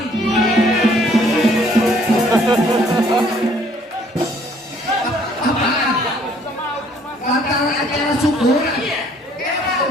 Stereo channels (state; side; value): normal; both; correlation 0.61